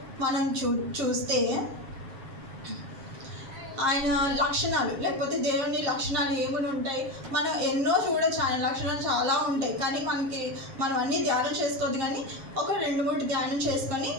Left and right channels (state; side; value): late; left; 7.5 ms